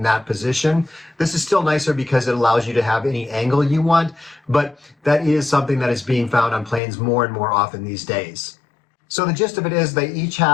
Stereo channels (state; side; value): drops out; right; at 6.8 s